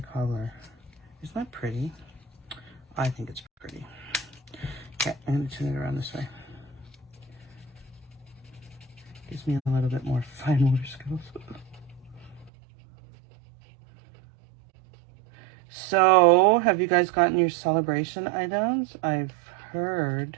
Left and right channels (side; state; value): left; drops out; at 12.5 s